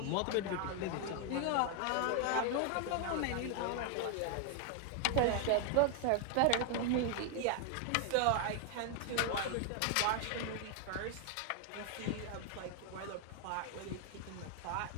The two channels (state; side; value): different; both; correlation 0.00